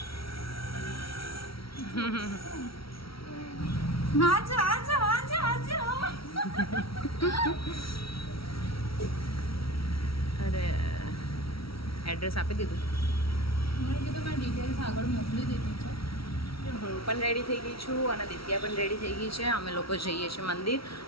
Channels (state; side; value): late; right; 0.75 ms